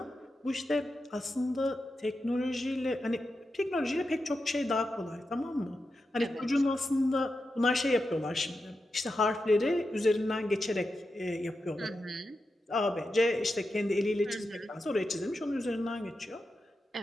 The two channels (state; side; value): normal; both; correlation 0.89